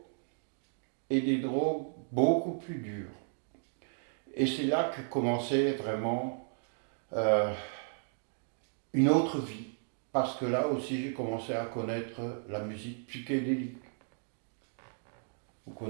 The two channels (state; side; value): silent; left; digital silence